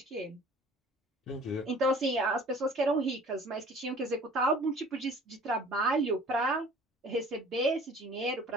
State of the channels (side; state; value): both; normal; correlation 0.49